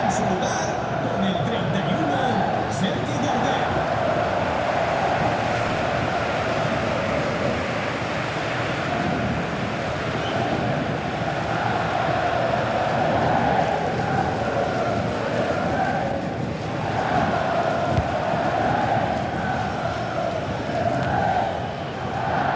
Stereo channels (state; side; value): identical; both; correlation 1.00